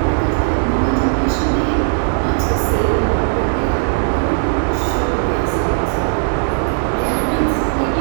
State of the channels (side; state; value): left; silent; digital silence